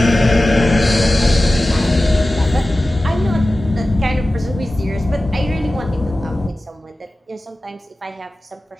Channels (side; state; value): both; normal; correlation 0.95